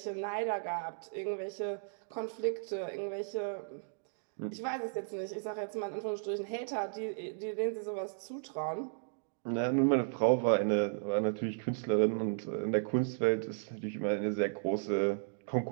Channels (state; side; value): silent; left; digital silence